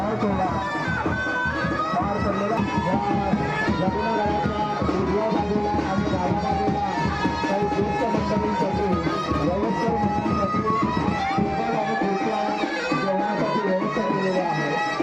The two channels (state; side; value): noise; right; rumble, 30 dB below the sound